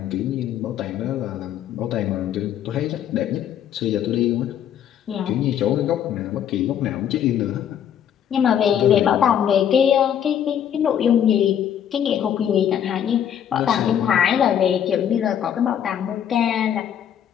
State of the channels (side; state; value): right; quieter; 9.5 dB